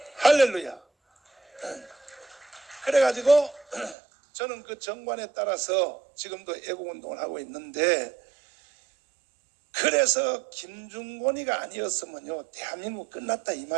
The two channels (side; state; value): left; drops out; at 4.0 s